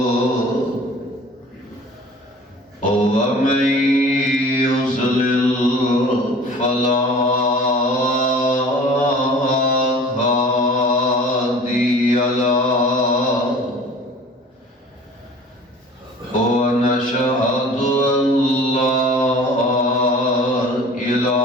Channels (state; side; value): normal; both; correlation 0.45